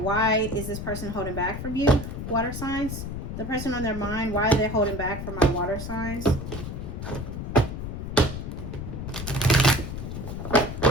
is this person holding back from you? Water signs. The person on their mind, why are they holding back from my water signs?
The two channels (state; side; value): noise; left; rumble, 6 dB below the sound